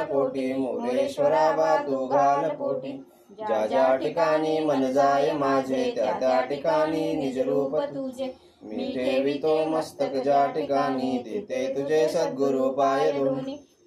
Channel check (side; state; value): both; identical; correlation 1.00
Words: कोटी मोरेश्वरा बा तू घाल पोटी ज्या ज्या ठिकाणी मन जाय माझे त्या त्या ठिकाणी निज रूप तुझे मी ठेवितो मस्तक ज्या ठिकाणी देते तुझे सद्गुरु पाय दोन्ही